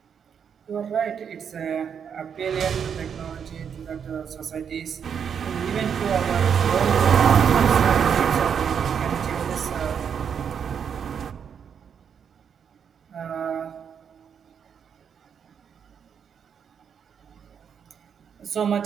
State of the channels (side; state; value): left; quieter; 7.4 dB